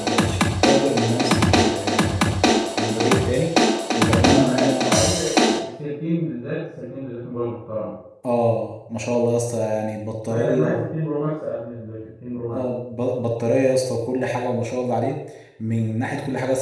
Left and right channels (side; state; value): both; identical; correlation 1.00